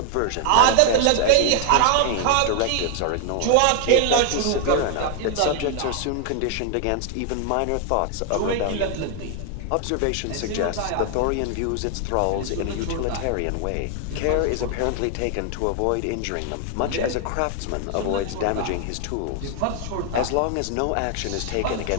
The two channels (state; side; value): different; both; correlation 0.00